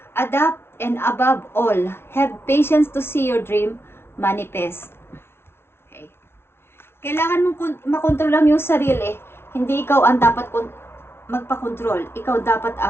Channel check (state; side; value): late; right; 0.12 ms